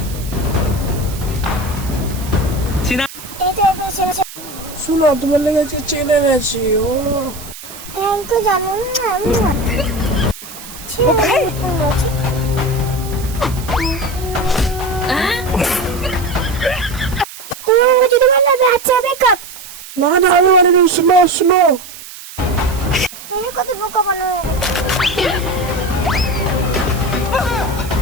এই তো শুনো তোমার লেগে আজকে চেনে এনেছি ও থ্যাংক ইউ জানু যদি বললো আচ্ছা বেকআপ না না আমি মানে শুনো শুনো কত বোকা বানানো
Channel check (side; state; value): right; noise; hiss, 14 dB below the sound